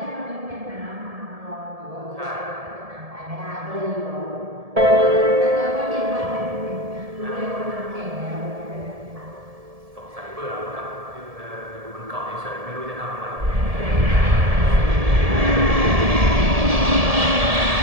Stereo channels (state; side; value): late; left; 1.7 ms